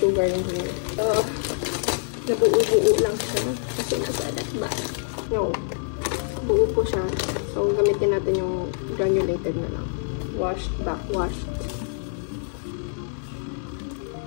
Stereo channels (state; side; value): silent; right; 61 dB below the other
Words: yung here. So, nabuo-buo lang siya. Kasi nasa ba? No. Buo po siya. So, gamitin natin yung granulated na lang. Washed, backwashed.